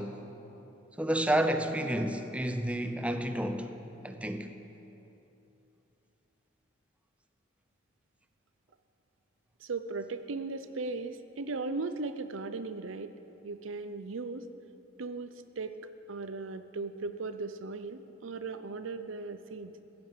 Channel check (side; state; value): both; normal; correlation 0.51